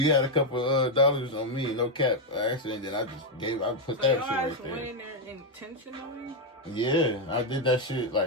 had a couple dollars on me? No cap. Actually, and then I put that shit right there. Went in there intentionally? Yeah, I did that shit.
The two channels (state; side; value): normal; both; correlation 0.03